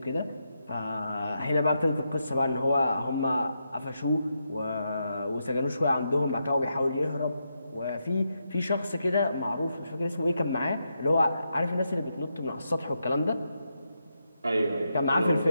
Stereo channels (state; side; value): inverted; both; correlation -0.84